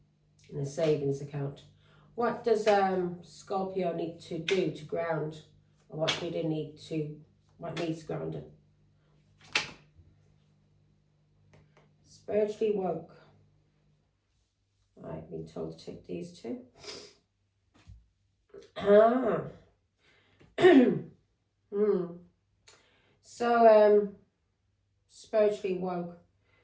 in a savings account, what does Scorpio need to do to ground? Or what needs grounding? Spiritually woke. I've been told to take these two. So, spiritually woke.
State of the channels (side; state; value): both; identical; correlation 1.00